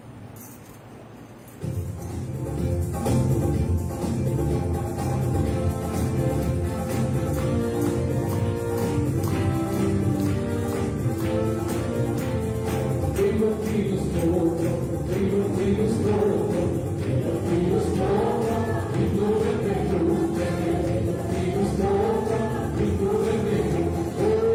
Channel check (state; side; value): identical; both; correlation 1.00